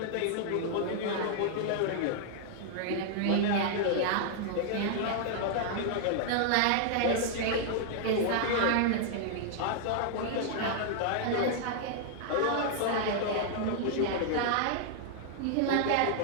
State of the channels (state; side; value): different; both; correlation -0.01